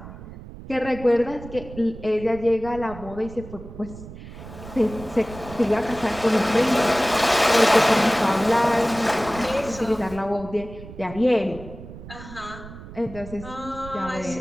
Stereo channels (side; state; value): right; noise; rumble, 14 dB below the sound